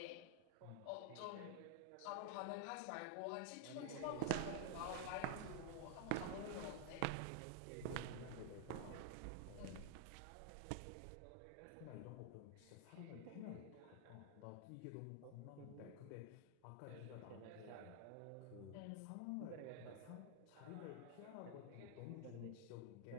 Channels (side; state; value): both; different; correlation 0.00